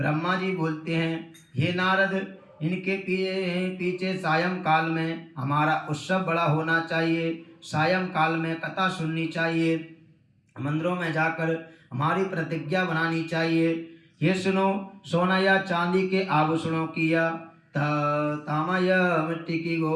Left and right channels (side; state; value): both; identical; correlation 1.00